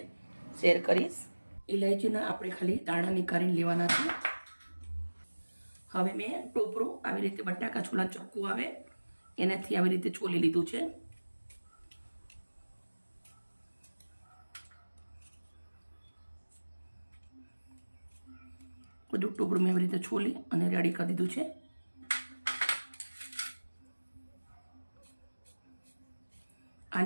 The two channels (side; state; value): both; inverted; correlation -1.00